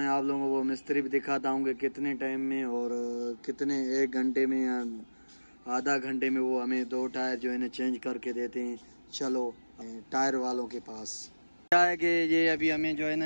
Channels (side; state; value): both; inverted; correlation -1.00